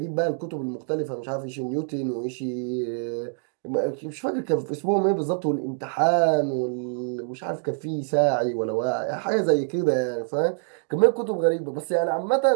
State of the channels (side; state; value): left; silent; digital silence